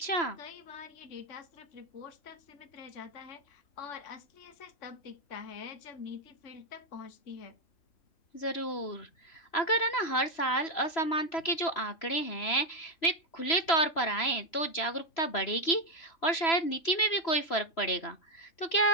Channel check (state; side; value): late; right; 3.0 ms